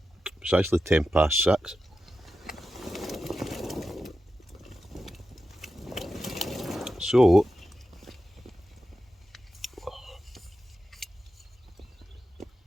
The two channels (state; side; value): normal; both; correlation 0.91